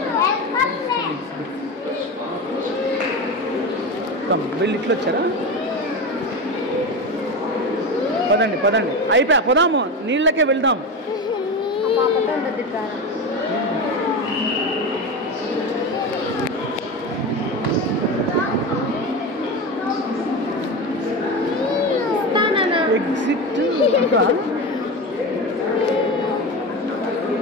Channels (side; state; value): both; normal; correlation 0.22